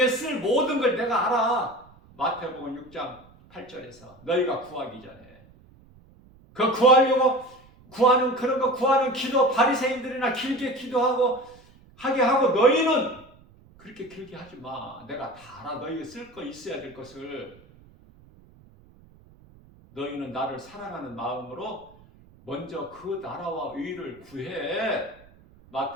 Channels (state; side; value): noise; right; rumble, 26 dB below the sound